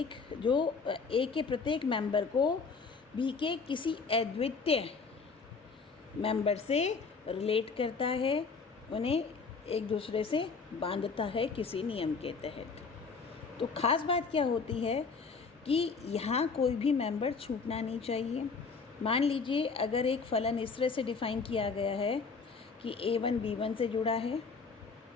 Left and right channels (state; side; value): quieter; right; 4.8 dB